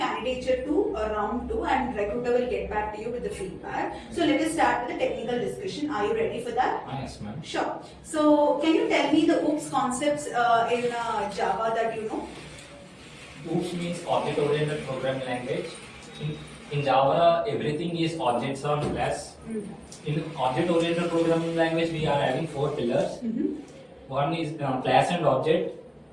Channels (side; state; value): both; identical; correlation 1.00